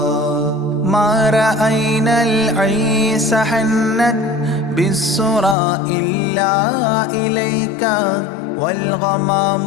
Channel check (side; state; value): right; drops out; at 5.6 s